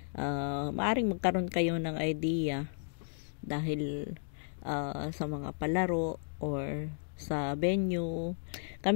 Maaring magkaroon kayo ng idea dahil sa mga palaro or sa venue.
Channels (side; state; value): right; silent; digital silence